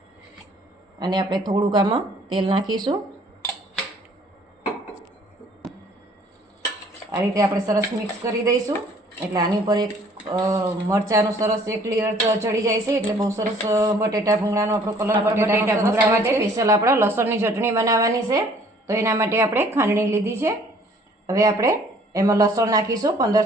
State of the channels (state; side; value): normal; both; correlation 0.57